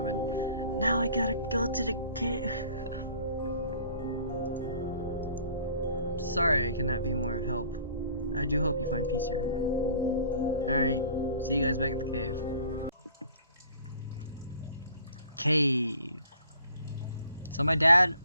in. Now I gotta go to the cave. Sorry I cannot be more of help. I do hope you find peace here. Alright, see you guys back at the cave. Cave. So my dad,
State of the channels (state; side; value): inverted; both; correlation -0.53